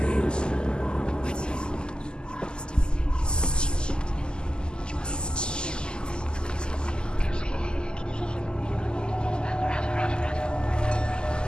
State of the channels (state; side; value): late; right; 0.047 ms